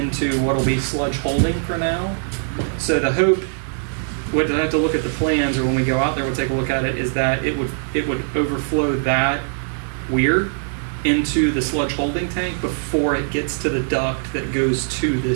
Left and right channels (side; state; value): left; silent; 65 dB below the other